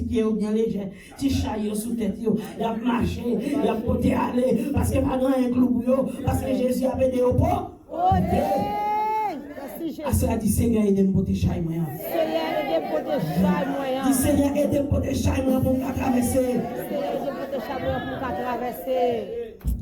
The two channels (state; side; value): identical; both; correlation 1.00